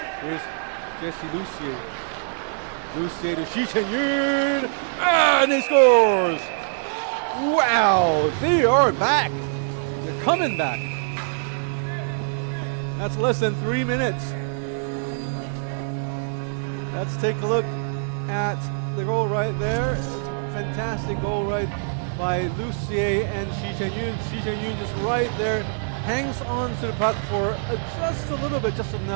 Here's Jesse Lucier. Lucier to Shi Chen-yun, and he scores! Wow, they are back. They're coming back. That's less than 3 minutes. Let's take a look at the goal right there. Fantastic goal right by Lucier and Shi Chen-yun. Shi Chen-yun just right there, hangs on to the puck for just a little bit, just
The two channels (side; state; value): left; silent; digital silence